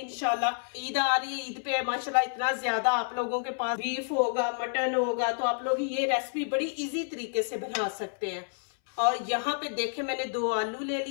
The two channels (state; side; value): silent; right; 58 dB below the other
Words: ईद आ रही है, ईद पे माशाल्लाह इतना ज्यादा आप लोगों के पास बीफ होगा, मटन होगा, तो आप लोग ये रेसिपी बड़ी इजी तरीके से बना सकते हैं। और यहाँ पे देखे मैंने 2 आलू ले